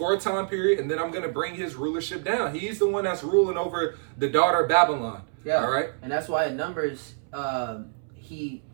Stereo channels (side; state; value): left; silent; 61 dB below the other